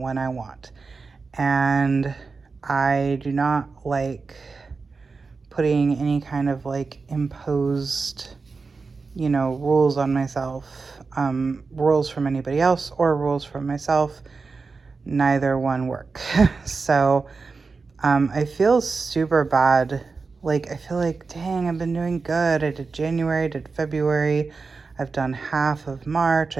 I want. And I do not like putting any kind of like imposed, you know, rules on myself, rules from anybody else or rules from myself. Neither one work. So I feel super bad. Like, I feel like, dang, I've been doing good. I did January, I did February. I've done half of March.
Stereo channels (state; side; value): quieter; left; 4.4 dB